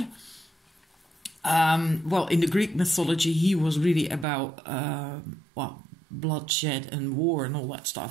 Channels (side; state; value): left; drops out; at 4.2 s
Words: Well, in the Greek mythology, he was really about, well, bloodshed and war and all that